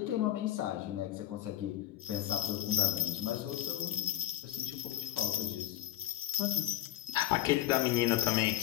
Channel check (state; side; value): quieter; right; 13.4 dB